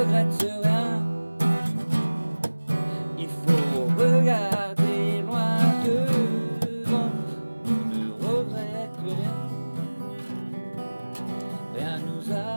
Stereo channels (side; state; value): both; inverted; correlation -1.00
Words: rien. Il faut regarder loin devant. Ne regrette rien. Rien nous